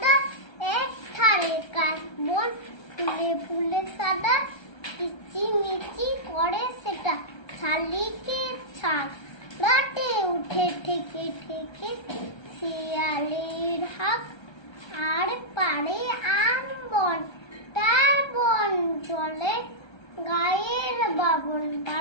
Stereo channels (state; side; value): late; right; 1.3 ms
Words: এক ধারে কাশবন ফুলে ফুলে সাদা, কিচিমিচি করে সেটা শালিকের ছাগ, রাতে উঠে ঠেকে ঠেকে শিয়ালের হাঁক। আর পারে আম বন, তার বন চলে গায়ের বাবন